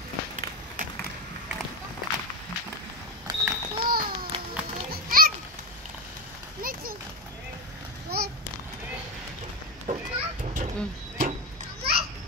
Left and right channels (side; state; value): both; normal; correlation 0.13